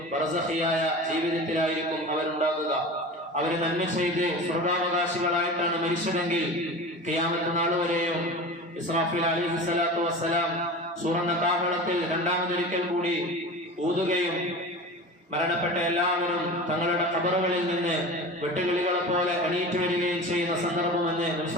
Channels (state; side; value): normal; both; correlation 0.33